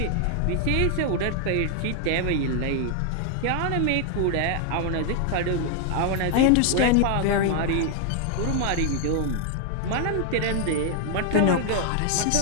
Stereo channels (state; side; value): different; both; correlation 0.00